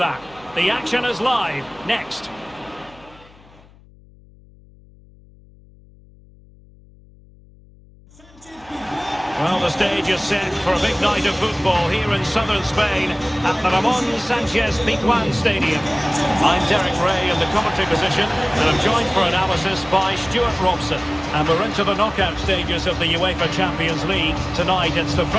The action is live, next. Well, the stage is set for a big night of football here in southern Spain at the Ramon Sanchez Pizjuan Stadium. I'm Derek Ray in the commentary position, and I'm joined for analysis by Stuart Robson. And we're into the knockout stages of the UEFA Champions League. Tonight, it's the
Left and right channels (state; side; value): noise; left; hum, 26 dB below the sound